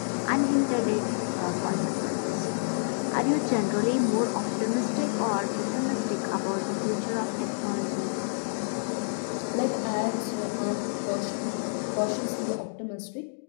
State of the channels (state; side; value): silent; right; digital silence